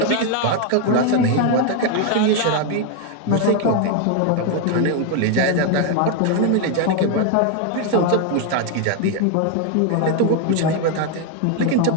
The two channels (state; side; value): different; both; correlation 0.01